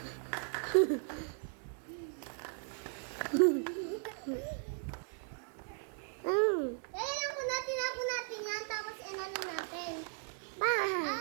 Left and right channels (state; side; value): silent; left; 53 dB below the other